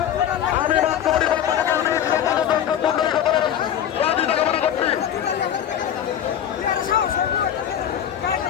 আমি রাষ্ট্রপতির পক্ষ থেকে দর্শক মন্ডলী সকলের সহযোগিতা কামনা করছি।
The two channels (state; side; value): quieter; right; 9.9 dB